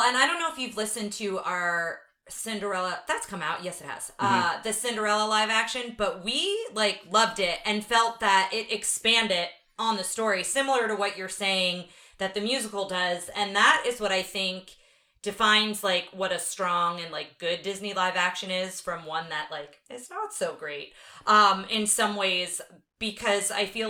and I don't know if you've listened to our Cinderella that's come out. Yes, it has. The Cinderella live action, but we like loved it and felt that it expanded on the story, similar to what you're saying that the musical does, and that is what I think defines like what a strong and like good Disney live action is from one that like is not so great in some ways, because I feel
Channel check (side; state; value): both; identical; correlation 1.00